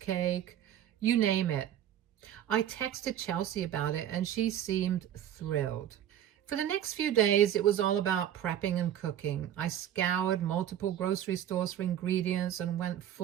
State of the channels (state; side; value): quieter; left; 10.8 dB